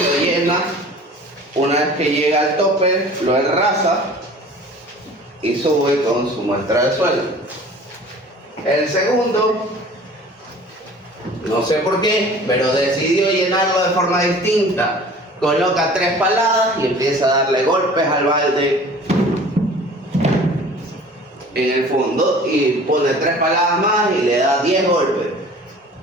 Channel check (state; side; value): normal; both; correlation 0.45